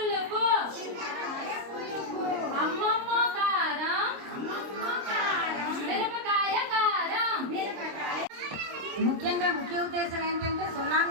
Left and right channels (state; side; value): late; left; 26 ms